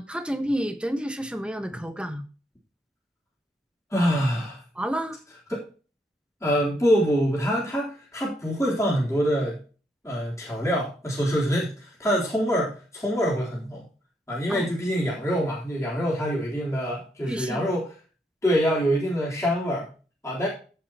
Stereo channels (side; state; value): both; normal; correlation 0.76